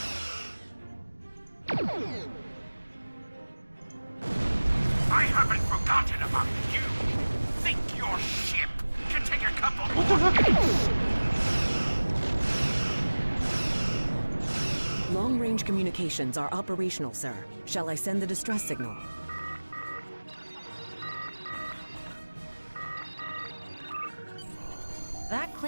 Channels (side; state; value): both; inverted; correlation -1.00